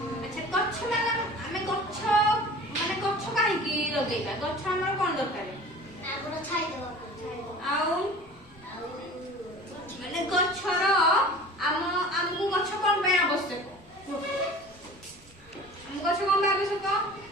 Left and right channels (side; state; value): both; normal; correlation 0.41